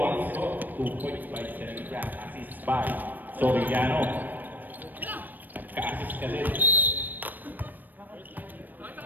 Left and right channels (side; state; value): left; late; 0.088 ms